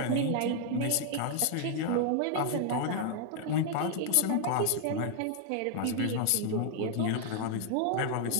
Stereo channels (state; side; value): different; both; correlation 0.00